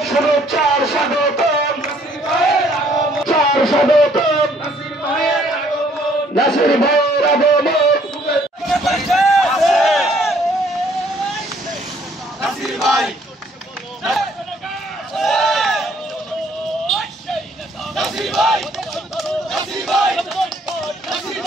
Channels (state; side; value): normal; both; correlation 0.63